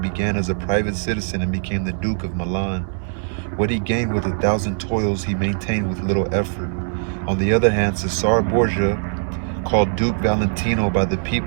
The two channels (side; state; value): left; silent; digital silence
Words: as a private citizen and became the Duke of Milan. What he gained with 1,000 toils, he maintained with little effort. On the other hand, Cesare Borgia, called Duke Valentino by the